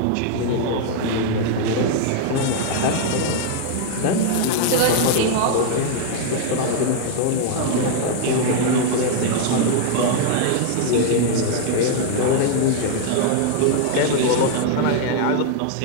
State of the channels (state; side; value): different; both; correlation 0.00